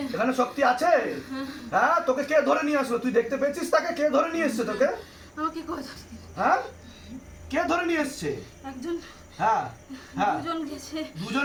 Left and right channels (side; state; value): both; identical; correlation 1.00